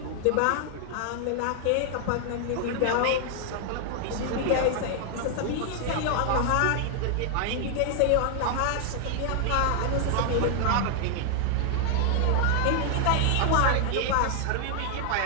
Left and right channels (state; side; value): different; both; correlation 0.00